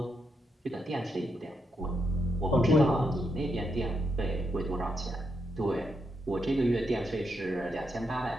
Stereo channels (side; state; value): both; normal; correlation 0.81